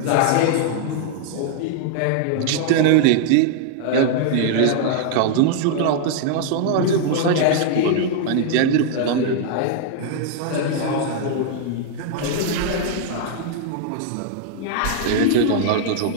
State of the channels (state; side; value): different; both; correlation 0.00